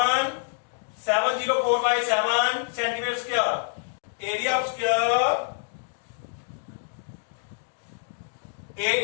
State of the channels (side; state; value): right; silent; digital silence